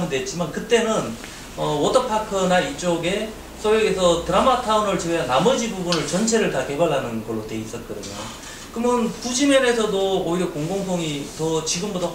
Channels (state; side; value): identical; both; correlation 1.00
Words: 됐지만, 그때는 워터파크나 이쪽에 소위에서 드라마타운을 제외한 나머지 부분을 전체를 다 개발하는 걸로 돼 있었거든요. 그러면 부지면에서도 오히려 공공성이 더 지금보다